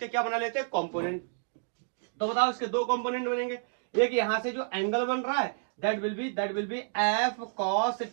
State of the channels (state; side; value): silent; left; digital silence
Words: क्या बना लेते हैं? कंपोनेंट। तो बताओ इसके दो कंपोनेंट बनेंगे। एक यहां से जो एंगल बन रहा है that will be F cos